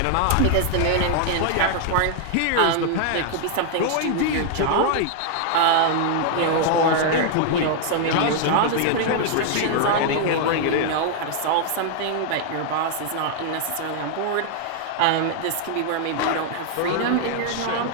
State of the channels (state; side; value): different; both; correlation -0.01